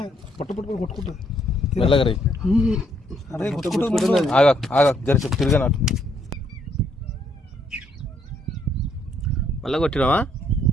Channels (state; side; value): normal; both; correlation 0.70